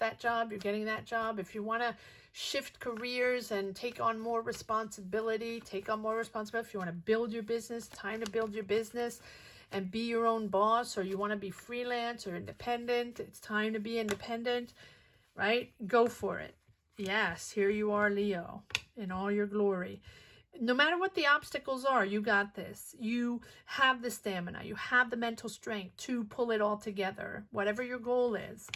job, you're getting that job. If you want to shift careers and take on more responsibility, take on more responsibility. If you want to build your business, time to build your business and be your own boss, or you want to be freelance or independent, it's time to be independent, right? Go for it. Yes, here you are, Leo, in all your glory. No matter what the obstacles are, you got this. You have the stamina. You have the mental strength to pull it all together. Whatever your goal is,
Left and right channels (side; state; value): both; identical; correlation 1.00